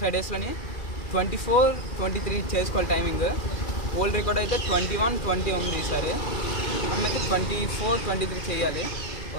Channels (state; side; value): late; right; 2.4 ms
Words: డేస్లోని 24-23 చేసుకోవాలి టైమింగ్. ఓల్డ్ రికార్డ్ అయితే 21-20 ఉంది ఈసారి. మనమైతే 24-23 చేయాలి.